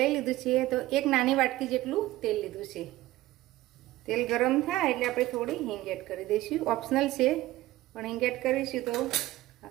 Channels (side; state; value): left; quieter; 16.9 dB